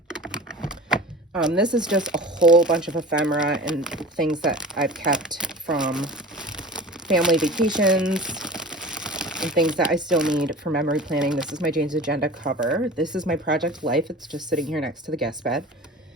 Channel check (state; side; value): normal; both; correlation 0.37